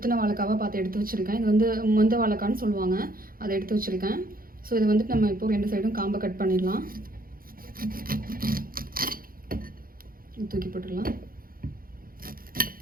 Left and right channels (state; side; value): late; left; 0.42 ms